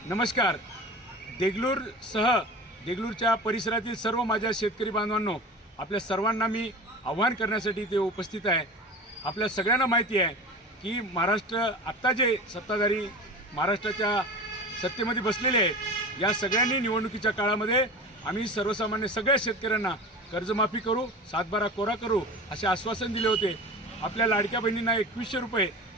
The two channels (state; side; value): normal; both; correlation 0.33